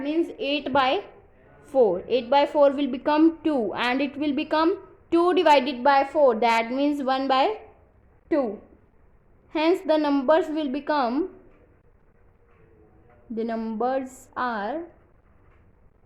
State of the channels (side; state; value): both; identical; correlation 1.00